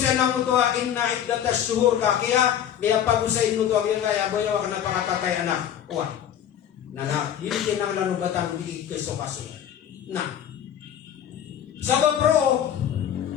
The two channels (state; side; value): quieter; right; 9.9 dB